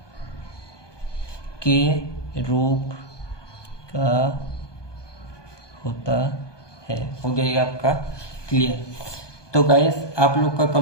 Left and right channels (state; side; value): late; right; 1.2 ms